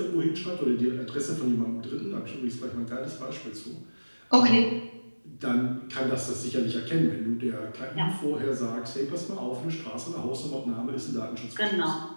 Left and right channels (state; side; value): inverted; both; correlation -1.00